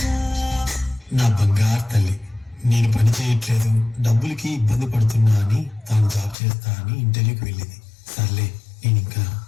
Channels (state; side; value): drops out; right; at 6.4 s